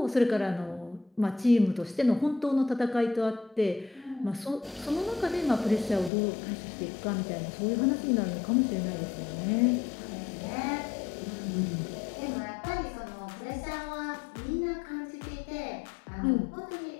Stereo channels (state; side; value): drops out; right; at 6.1 s